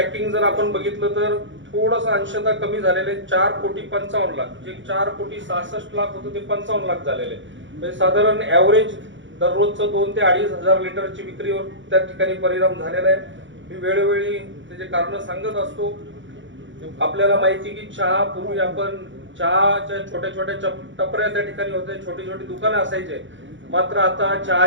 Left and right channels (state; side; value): late; left; 0.55 ms